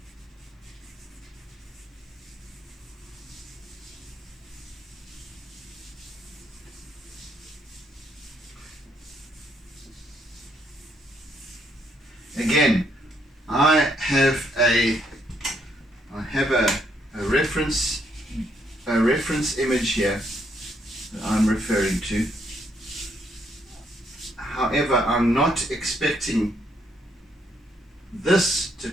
Again, I have a reference image here that I'm referring to. However, I'm not expecting this to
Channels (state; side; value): normal; both; correlation 0.73